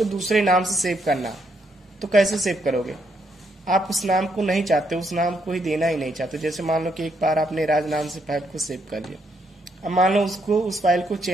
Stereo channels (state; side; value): normal; both; correlation 0.75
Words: दूसरे नाम से सेव करना, तो कैसे सेव करोगे? आप उस नाम को नहीं चाहते, उस नाम को ही देना ही नहीं चाहते। जैसे मान लो कि एक बार आपने राज नाम से फाइल को सेव कर लिया, अब मान लो उसको उस फाइल को